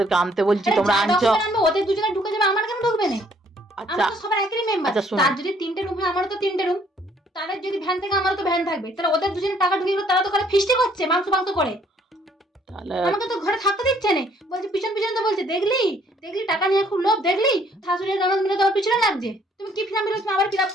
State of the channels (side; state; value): both; normal; correlation 0.63